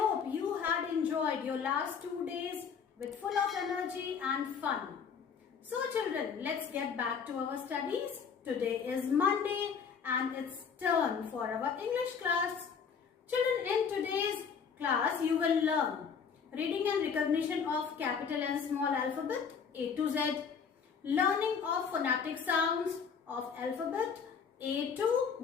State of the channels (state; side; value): quieter; right; 6.4 dB